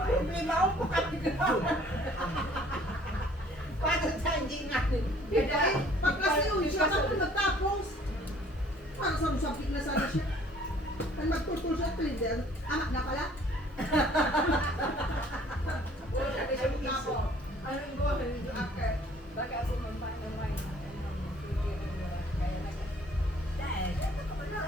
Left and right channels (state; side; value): normal; both; correlation 0.56